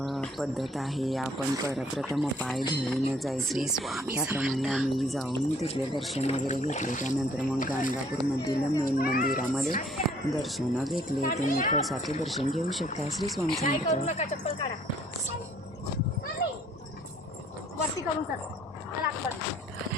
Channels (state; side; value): normal; both; correlation 0.59